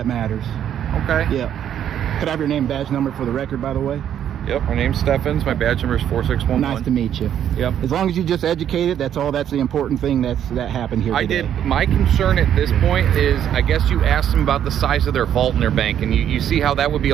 matters. Okay. Yeah. Could I have your name, badge number for the record, by the way? Yep, my name's Steffens. My badge number is 4611. Nice to meet you. Yep. As long as you just educated, that's all. That's the important thing that happened here I today. did. My concern at this point is, I guess you asked them about the size of their vault in their bank, and you see how that would be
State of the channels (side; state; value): left; quieter; 9.9 dB